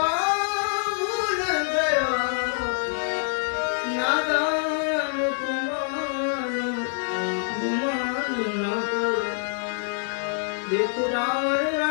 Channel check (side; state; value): right; silent; 59 dB below the other